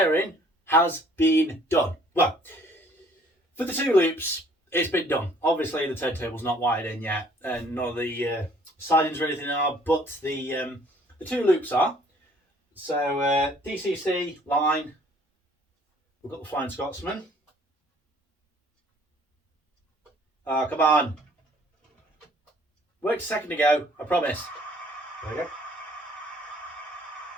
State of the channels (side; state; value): both; normal; correlation 0.58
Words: has been done. Well, for the two loops, it's been done. Obviously the turntable's not wired in yet, and none of the sidings or anything are, but the two loops are. So DCC line, we've got the Flying Scotsman. Oh, come on. Worked a second ago, I promise. There we go.